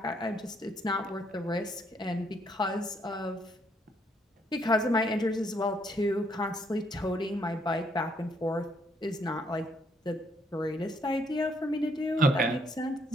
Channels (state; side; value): normal; both; correlation 0.70